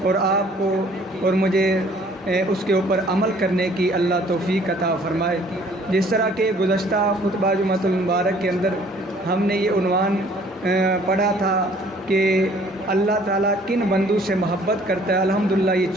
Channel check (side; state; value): both; normal; correlation 0.57